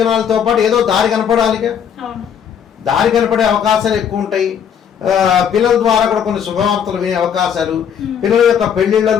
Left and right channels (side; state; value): right; quieter; 8.1 dB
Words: పాటు ఏదో దారి కనపడాలిగా, దారి కనపడే అవకాశాలు ఎక్కువ ఉంటాయి. పిల్లల ద్వారా కూడా కొన్ని శుభవార్తలు వినే అవకాశాలు, పిల్లల యొక్క